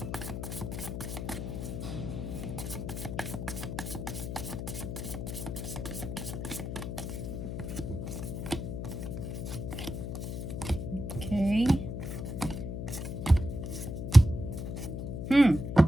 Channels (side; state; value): left; noise; hum, 4 dB below the sound